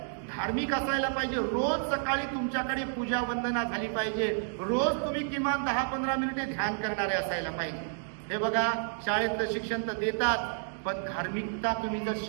धार्मिक असायला पाहिजे. रोज सकाळी तुमच्याकडे पूजा वंदना झाली पाहिजे. रोज तुम्ही किमान 10-15 मिनिटे ध्यान करणारे असायला पाहिजे. हे बघा, शाळेतलं शिक्षण तर देतात, पण धार्मिकता तुम्ही जर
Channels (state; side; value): silent; left; digital silence